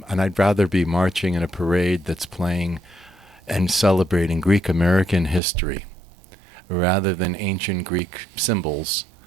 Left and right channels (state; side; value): drops out; left; at 5.4 s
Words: I'd rather be marching in a parade that's playing and celebrating Greek American history rather than ancient Greek symbols.